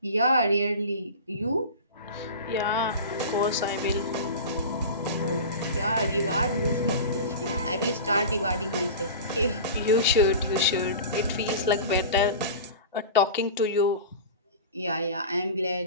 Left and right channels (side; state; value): both; inverted; correlation -0.32